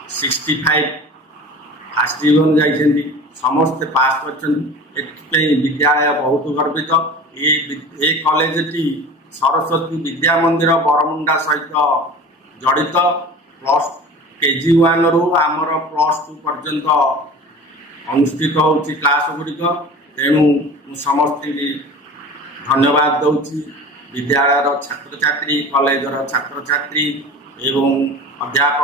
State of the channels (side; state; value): both; normal; correlation 0.38